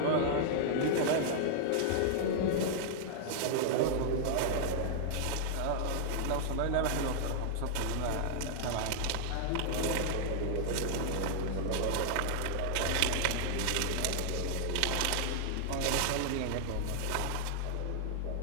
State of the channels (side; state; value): both; different; correlation -0.01